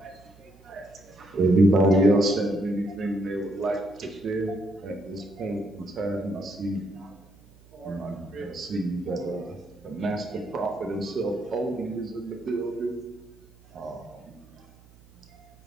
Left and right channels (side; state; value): right; noise; hum, 25 dB below the sound